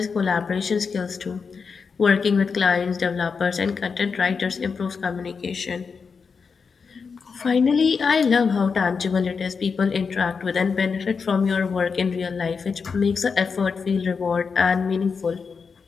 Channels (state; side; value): quieter; right; 5.4 dB